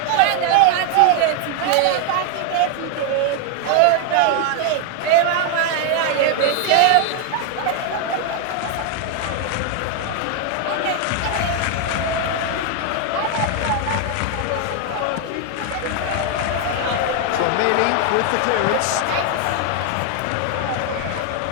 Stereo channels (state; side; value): different; both; correlation 0.01